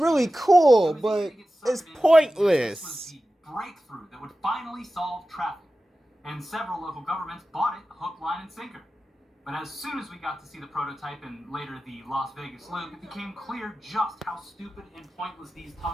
cool, but it's pointless. This was the breakthrough that would finally solve traffic, and several local governments bought it hook, line, and sinker. But as soon as we got to see the prototype and later the Las Vegas loop, it became clear just how stupid and pointless these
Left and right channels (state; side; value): normal; both; correlation 0.94